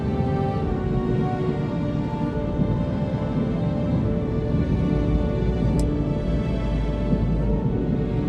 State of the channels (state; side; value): identical; both; correlation 1.00